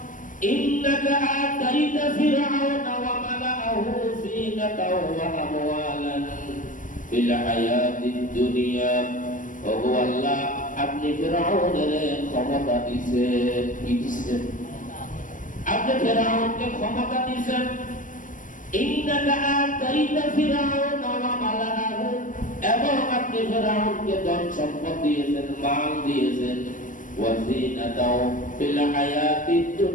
ইন্নাকা আতাইতা ফিরআউনা ওয়া মালাআহু যিনাতাও ওয়া আমওয়ালান ফিল হায়াতিদ দুনিয়া ও আল্লাহ আপনি ফিরআউনের ক্ষমতা দিয়েছেন কি দিয়েছেন? আপনি ফিরআউনকে ক্ষমতা দিয়েছেন ইন্নাকা আতাইতা ফিরআউনা ওয়া মালাআহু এবং আপনি ফেরাউনকে ধন সম্পদ দিয়েছেন মাল দিয়েছেন ওয়াজিনাতাও ফিল হায়াতিদ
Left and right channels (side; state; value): right; late; 0.38 ms